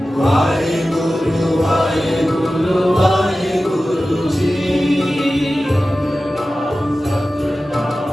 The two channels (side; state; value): both; normal; correlation 0.95